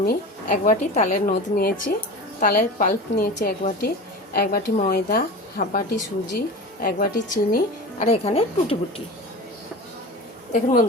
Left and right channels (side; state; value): both; normal; correlation 0.31